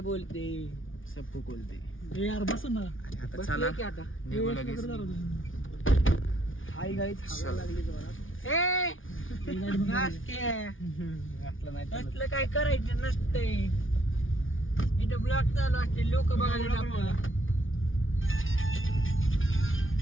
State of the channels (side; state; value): right; late; 0.57 ms